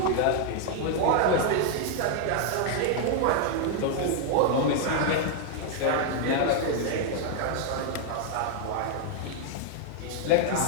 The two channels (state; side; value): different; both; correlation 0.00